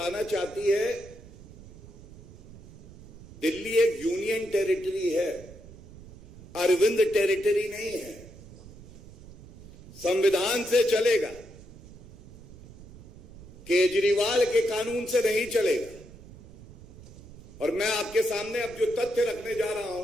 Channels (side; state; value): right; noise; rumble, 20 dB below the sound